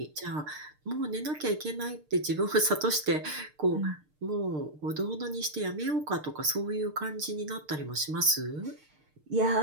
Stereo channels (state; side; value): late; left; 6.6 ms